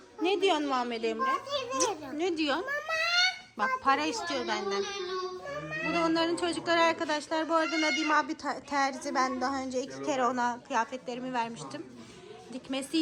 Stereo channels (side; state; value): both; identical; correlation 1.00